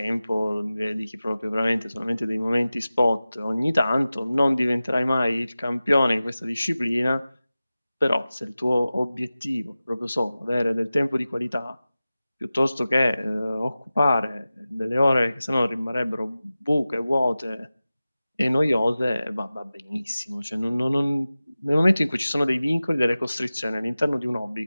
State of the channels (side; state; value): both; inverted; correlation -0.96